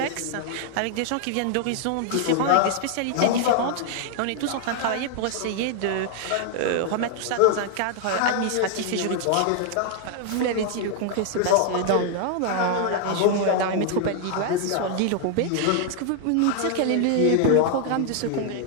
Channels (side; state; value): both; different; correlation 0.00